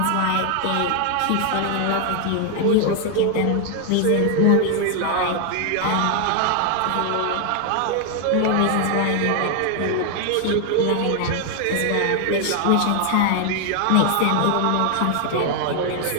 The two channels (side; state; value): both; different; correlation 0.00